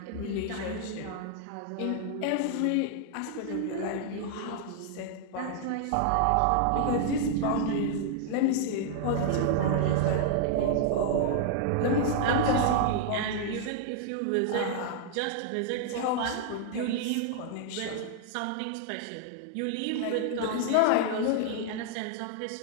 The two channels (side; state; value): both; different; correlation -0.01